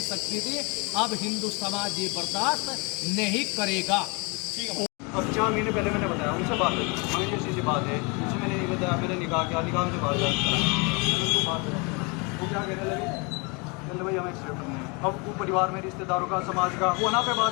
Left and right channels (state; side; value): quieter; right; 30.4 dB